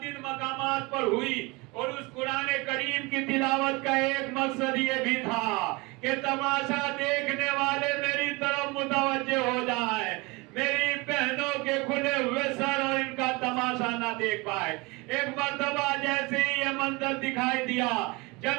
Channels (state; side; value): quieter; left; 25.4 dB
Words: مقامات پر ہوئی, اور اس قرآن کریم کی تلاوت کا ایک مقصد یہ بھی تھا کہ تماشا دیکھنے والے میری طرف متوجہ ہو جائیں, میری بہنوں کے کھلے ہوئے سر اور ان کا تماشا نہ دیکھ پائے. ایک مرتبہ جیسے ہی یہ منظر دکھائی دیا